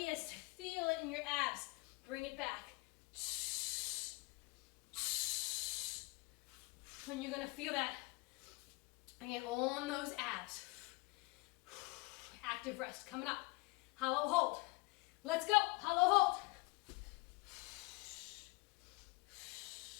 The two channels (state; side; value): quieter; right; 25.5 dB